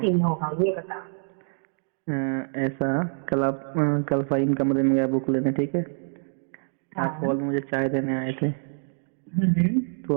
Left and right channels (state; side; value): silent; left; digital silence